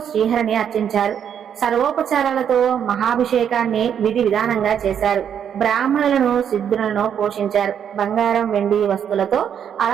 శ్రీహరిని అర్చించారు. సర్వోపచారాలతో మహాభిషేకాన్ని విధి విధానంగా చేశారు. బ్రాహ్మణులను, సిద్ధులను పోషించారు. బంగారం, వెండి వస్తువులతో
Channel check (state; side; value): quieter; left; 8.5 dB